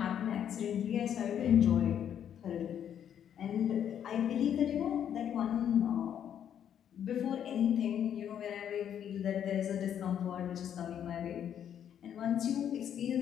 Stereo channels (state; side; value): quieter; right; 9.3 dB